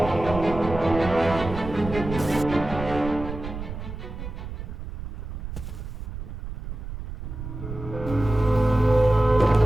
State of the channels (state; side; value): noise; right; rumble, 9 dB below the sound